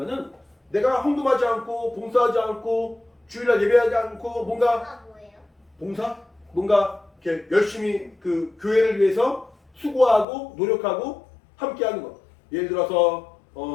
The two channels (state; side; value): drops out; right; at 10.2 s